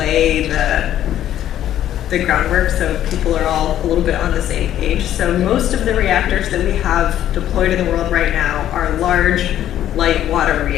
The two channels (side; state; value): right; quieter; 11.7 dB